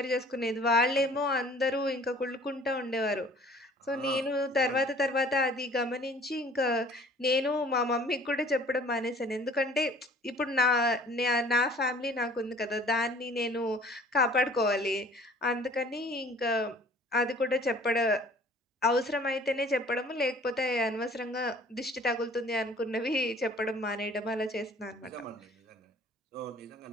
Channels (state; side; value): normal; both; correlation 0.51